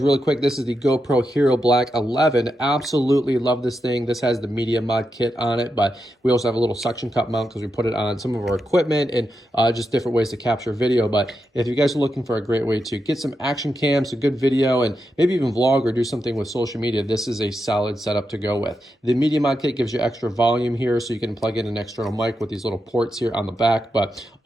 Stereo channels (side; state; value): both; normal; correlation 0.87